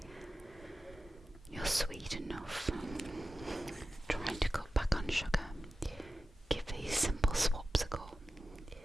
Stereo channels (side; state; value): both; normal; correlation 0.93